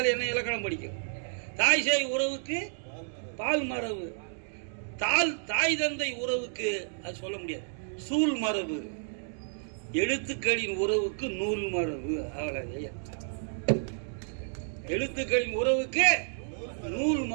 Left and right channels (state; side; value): silent; left; digital silence